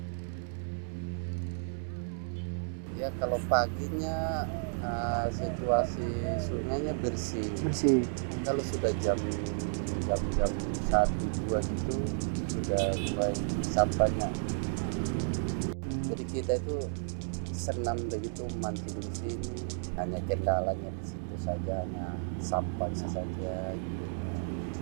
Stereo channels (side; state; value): left; silent; digital silence